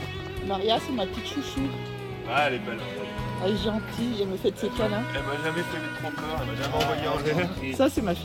Maria, c'est ma petite chouchou. Ah, elle est belle. Elle est gentille, elle me fait de ses câlins. Elle m'a jamais fait trop peur, elle m'a jamais envoyé en l'air. Ça, c'est ma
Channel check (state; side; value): identical; both; correlation 1.00